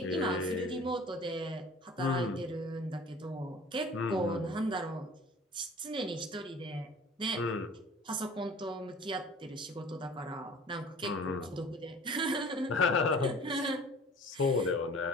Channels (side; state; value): both; normal; correlation 0.46